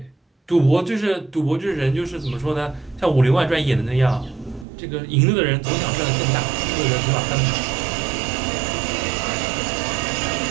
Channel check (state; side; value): drops out; left; at 4.7 s